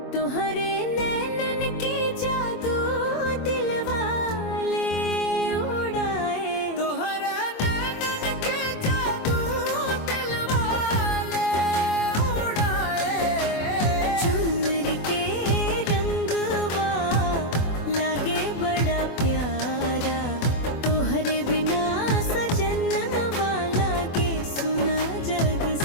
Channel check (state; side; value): late; right; 24 ms